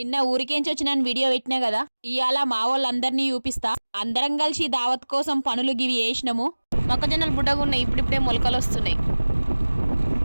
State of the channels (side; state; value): both; inverted; correlation -1.00